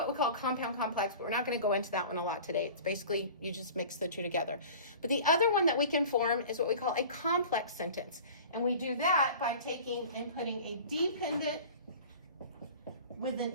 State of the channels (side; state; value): both; inverted; correlation -0.41